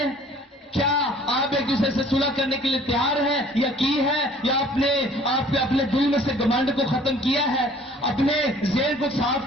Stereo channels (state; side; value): normal; both; correlation 0.53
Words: کیا آپ ایک دوسرے سے صلح کرنے کے لیے تیار ہیں یا کی ہے؟ یا آپ نے اپنے دل میں سے گمنڈ کو ختم کیا ہے, اپنے ذہن کو صاف